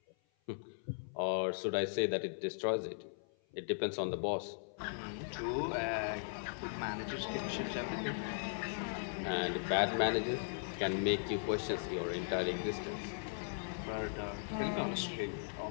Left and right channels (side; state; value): right; silent; 52 dB below the other